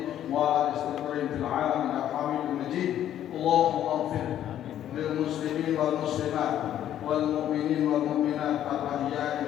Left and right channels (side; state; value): right; quieter; 11.2 dB